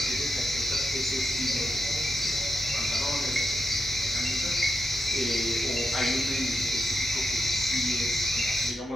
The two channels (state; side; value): normal; both; correlation 0.87